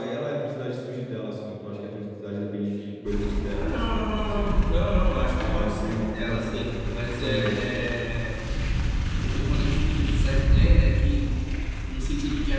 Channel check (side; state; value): both; identical; correlation 1.00